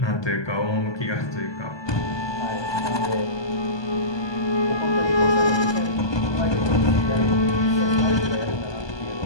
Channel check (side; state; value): right; late; 1.2 ms